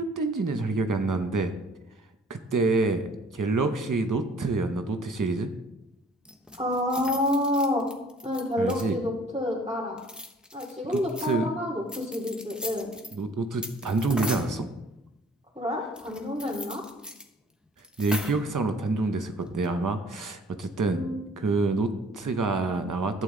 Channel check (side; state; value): both; normal; correlation 0.54